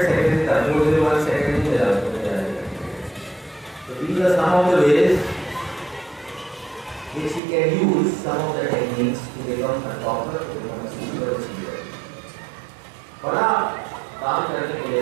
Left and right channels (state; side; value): drops out; left; at 7.4 s